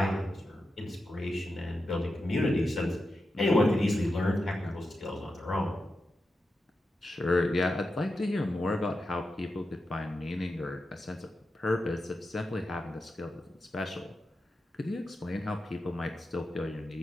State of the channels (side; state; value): both; normal; correlation 0.89